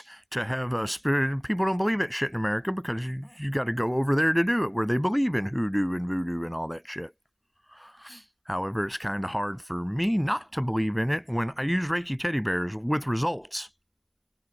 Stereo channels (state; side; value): identical; both; correlation 1.00